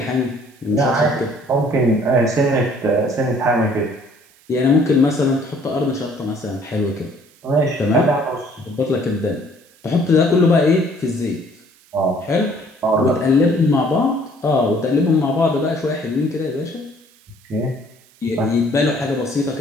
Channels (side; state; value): right; noise; hiss, 29 dB below the sound